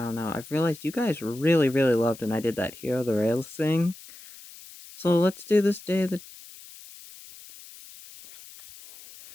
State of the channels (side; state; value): left; noise; hiss, 19 dB below the sound